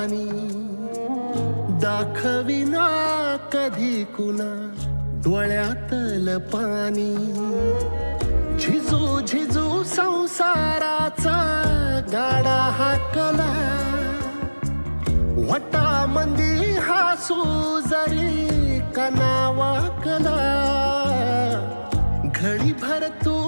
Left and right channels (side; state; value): both; inverted; correlation -1.00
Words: दाखविना कधी कुणा डोळ्यातल पाणी. झिजू झिजू संसाराचा गाडा हाकला, वटामंदी हासू जरी कना वाकला. घडी भर तू